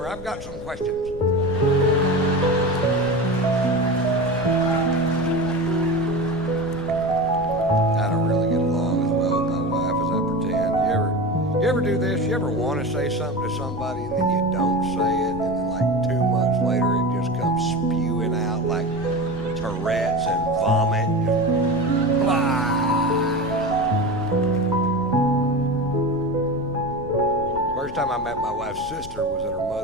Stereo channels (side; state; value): left; noise; rumble, 14 dB below the sound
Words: I've got some questions. I don't really get along as well with my wife as I pretend. You ever do this? You ever want to say something to somebody and then you don't say it, and then like 2 months later it just comes spewing out like Tourette's and vomit? Blah. First time I met my wife's sister was at her